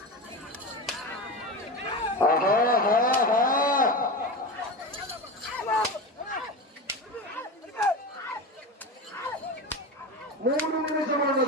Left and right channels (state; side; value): normal; both; correlation 0.24